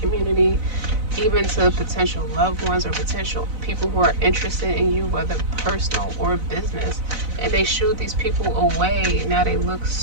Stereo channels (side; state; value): left; late; 4.0 ms